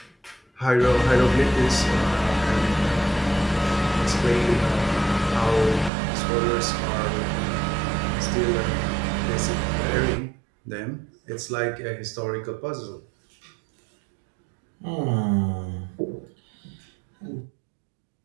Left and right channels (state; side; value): drops out; left; at 5.9 s